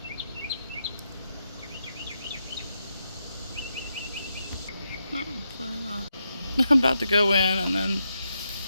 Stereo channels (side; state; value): both; inverted; correlation -0.84